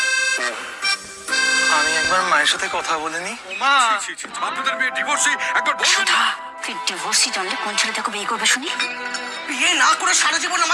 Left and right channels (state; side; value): identical; both; correlation 1.00